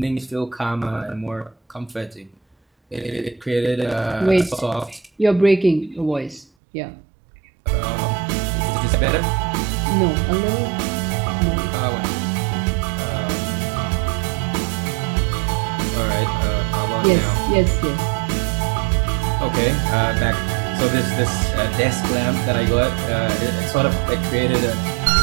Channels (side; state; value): left; drops out; at 6.5 s